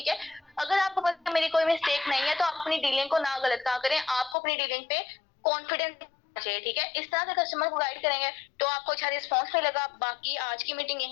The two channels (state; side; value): drops out; right; at 4.4 s